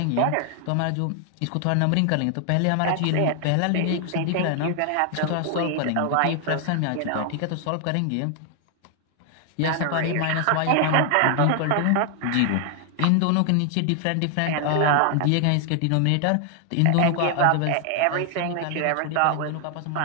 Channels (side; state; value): both; different; correlation 0.00